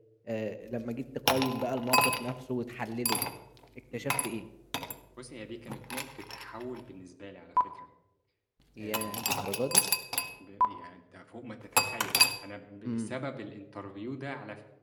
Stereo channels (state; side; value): identical; both; correlation 1.00